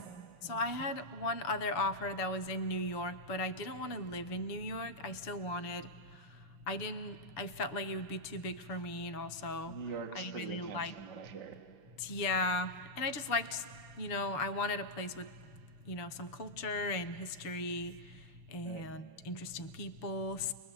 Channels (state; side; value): late; right; 6.9 ms